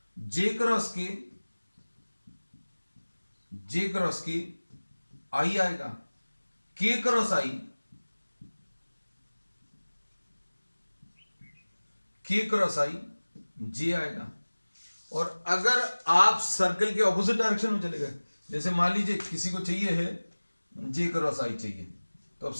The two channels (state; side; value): inverted; both; correlation -1.00